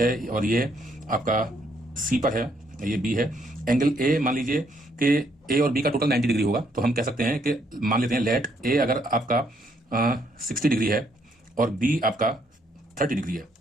और ये आपका सी पर है, ये बी है। एंगल ए मान लीजिए कि ए और बी का टोटल 90 डिग्री होगा। तो हम कह सकते हैं कि मान लेते हैं लेट ए अगर आपका 60 डिग्री है और बी आपका 30 डिग्री है,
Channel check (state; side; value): normal; both; correlation 0.71